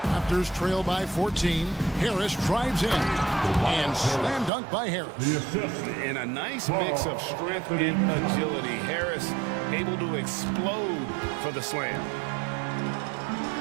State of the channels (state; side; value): drops out; left; at 4.5 s